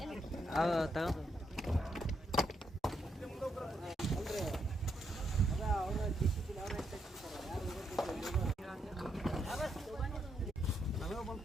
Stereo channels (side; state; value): both; normal; correlation 0.78